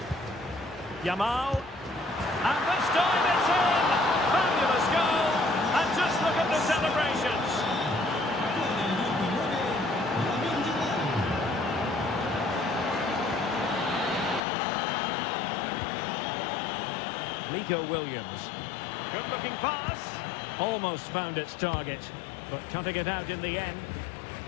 Yamal. And this time it's in! Fabulous goal! And just look at the celebrations! Nico Williams. Good-looking pass. Almost found its target, but cutting it out in the end.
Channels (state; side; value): drops out; right; at 14.4 s